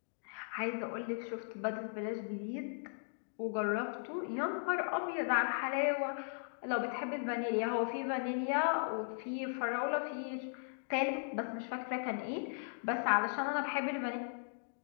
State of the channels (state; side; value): silent; right; digital silence